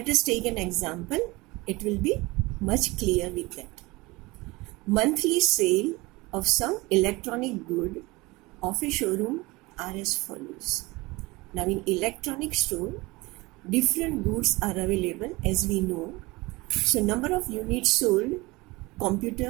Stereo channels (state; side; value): quieter; left; 22.7 dB